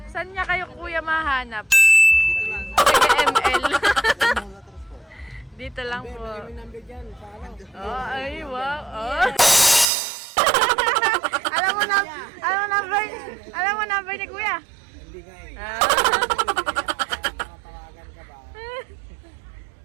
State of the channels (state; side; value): drops out; left; at 9.9 s